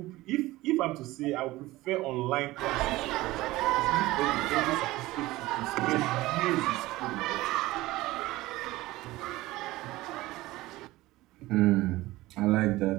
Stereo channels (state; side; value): quieter; left; 18.5 dB